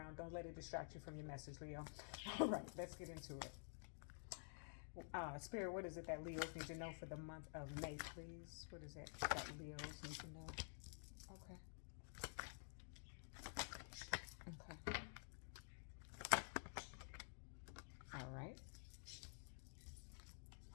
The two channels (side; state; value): right; silent; digital silence